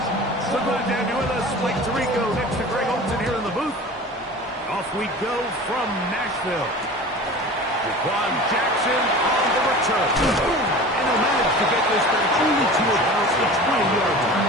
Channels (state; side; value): normal; both; correlation 0.38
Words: So glad to have you with us. Blake Tirico next to Greg Olsen here in the booth. Off we go from Nashville. Jaquan Jackson on the return. And he'll manage to get this back only to about the 20-yard